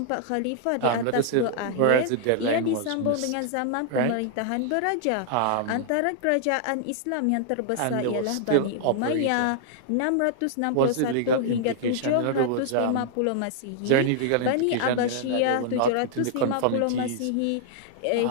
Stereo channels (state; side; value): different; both; correlation -0.01